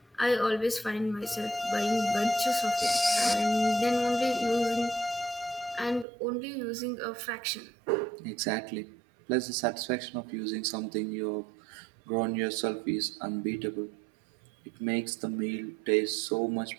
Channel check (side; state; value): left; drops out; at 6.1 s